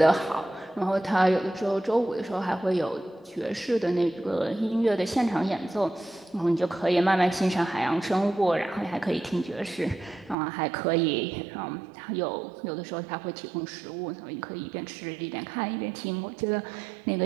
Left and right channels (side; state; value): left; drops out; at 10.4 s